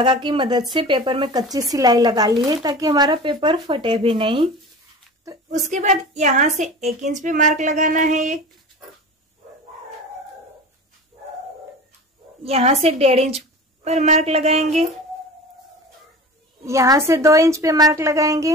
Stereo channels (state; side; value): normal; both; correlation 0.35